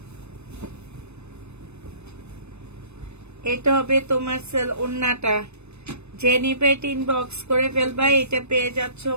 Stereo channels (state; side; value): late; left; 0.81 ms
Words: এটা হবে তোমার সেল ওন্নাটা। যে নিবে ইনবক্স করে ফেলবা। এটা পেয়ে যাচ্ছ